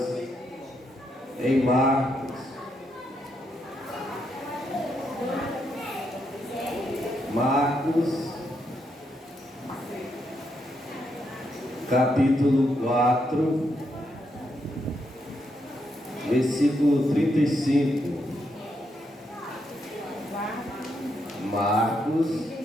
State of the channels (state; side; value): normal; both; correlation 0.79